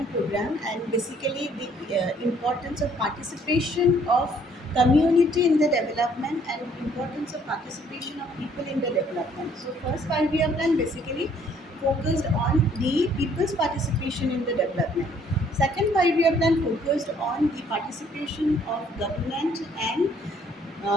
program, and basically the importance of participation of community in the development and importance of participation of people in the development. So first 5-year plan basically focused on the people's participation in the development. Second 5-year plan focused on the participation of government and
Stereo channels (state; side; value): normal; both; correlation 0.62